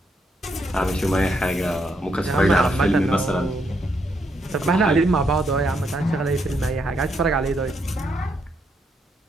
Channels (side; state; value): both; normal; correlation 0.77